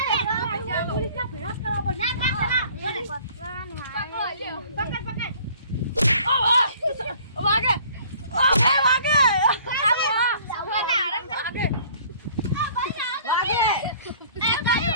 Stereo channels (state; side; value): inverted; both; correlation -0.53